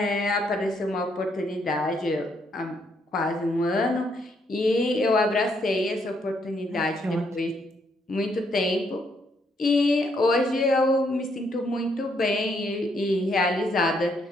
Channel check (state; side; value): normal; both; correlation 0.73